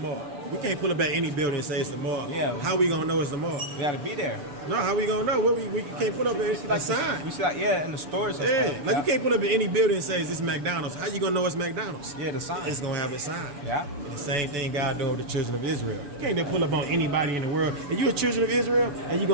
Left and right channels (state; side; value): late; left; 6.9 ms